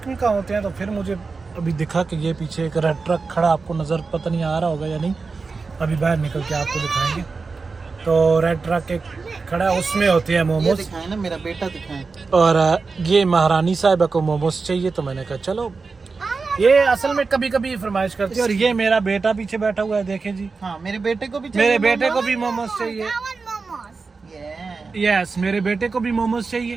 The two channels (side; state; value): left; quieter; 4.4 dB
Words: में कहाँ होते हैं? तो फिर मुझे अभी दिखा कि ये पीछे एक रेड ट्रक खड़ा, आपको नज़र पता नहीं आ रहा होगा या नहीं, अभी बाहर निकल के आपको दिखाएंगे। तो रेड ट्रक एक खड़ा है, उसमें होते हैं मोमोज। दिखाए ना, मेरा बेटा दिखाए। और ये महारानी साहिबा को मोमोज चाहिए, तो मैंने कहा चलो। ये असल में कभी कभी फरमाइश करती है। और ये मेरा बेटा पीछे बैठा हुआ है, देखें जी। हाँ, मेरे बेटे को भी मोमोज चाहिए। यस, मेरे बेटे को भी मोमोज